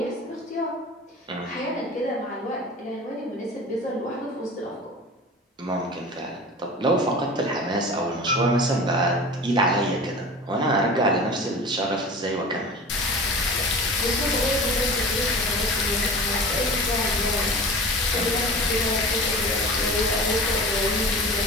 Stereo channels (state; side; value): normal; both; correlation 0.36